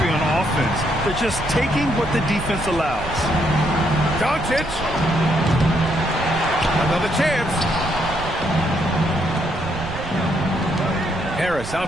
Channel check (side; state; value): right; noise; rumble, 10 dB below the sound